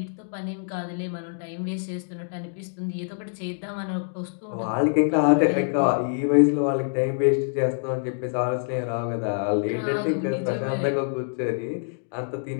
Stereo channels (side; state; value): right; silent; digital silence